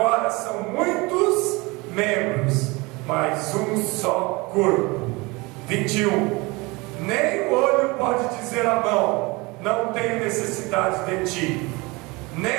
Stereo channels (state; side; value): quieter; left; 24.9 dB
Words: são muitos membros, mas um só corpo. 21: nem o olho pode dizer à mão: não tenho necessidade de ti,